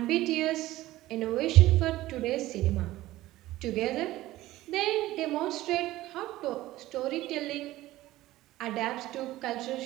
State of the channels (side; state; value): left; quieter; 16.4 dB